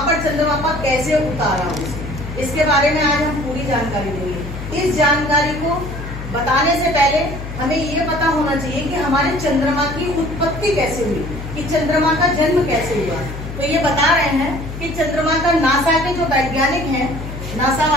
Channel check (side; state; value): left; noise; hum, 9 dB below the sound